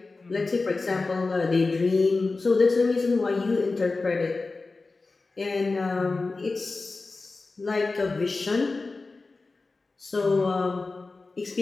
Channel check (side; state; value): right; quieter; 3.7 dB